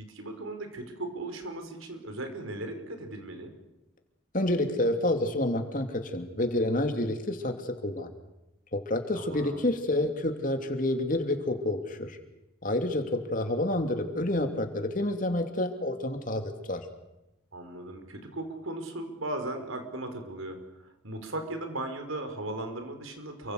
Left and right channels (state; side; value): normal; both; correlation 0.33